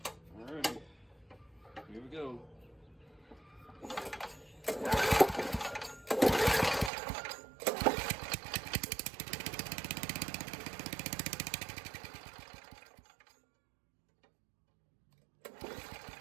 Alrighty, here we go.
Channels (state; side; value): drops out; left; at 6.9 s